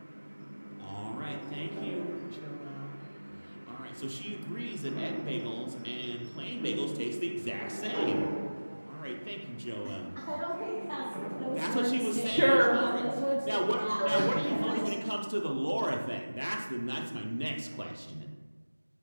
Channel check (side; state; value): both; inverted; correlation -1.00